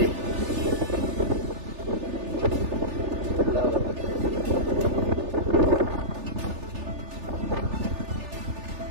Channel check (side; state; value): left; late; 3.4 ms